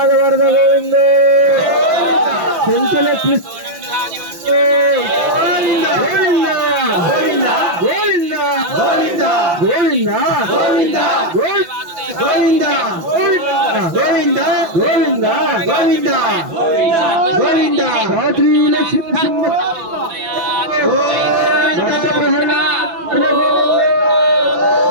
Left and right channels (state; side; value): late; left; 6.0 ms